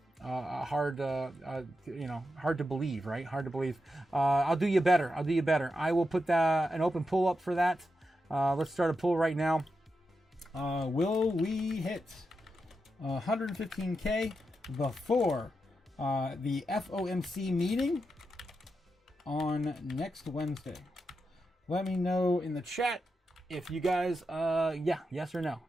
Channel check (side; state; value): both; normal; correlation 0.87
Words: to believe, right? Hard to believe. I'll do you better. I will put an open pull up for that. Let's start a poll right now. Will we hit 115K before the FOMC meeting on next Wednesday? Let me know in the chat if you guys, yes or no.